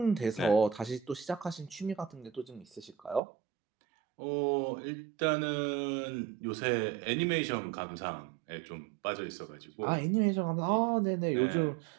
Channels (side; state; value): left; drops out; at 3.2 s